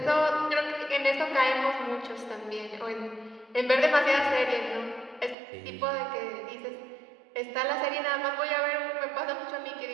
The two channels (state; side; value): drops out; left; at 5.4 s